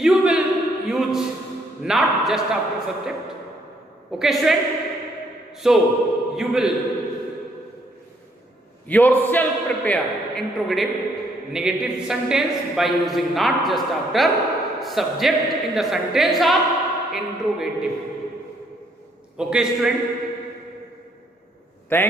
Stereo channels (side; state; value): both; normal; correlation 0.69